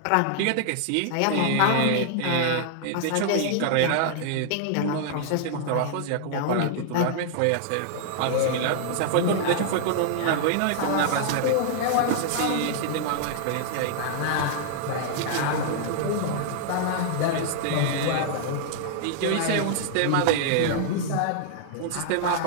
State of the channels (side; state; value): both; different; correlation -0.01